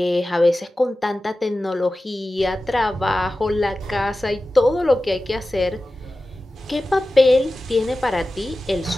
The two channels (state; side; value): normal; both; correlation 0.95